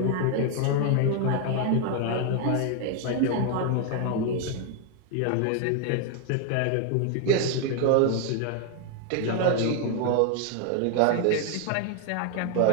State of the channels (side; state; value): both; different; correlation 0.00